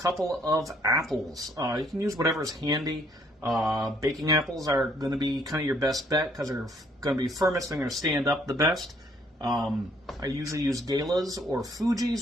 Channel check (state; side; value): normal; both; correlation 0.65